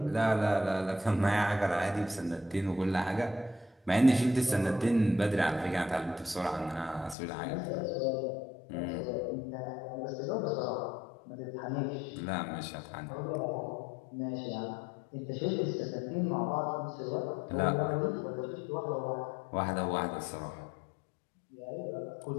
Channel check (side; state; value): right; drops out; at 7.2 s